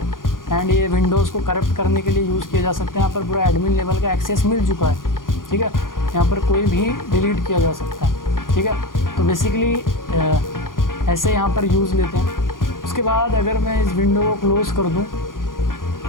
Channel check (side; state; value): right; late; 0.90 ms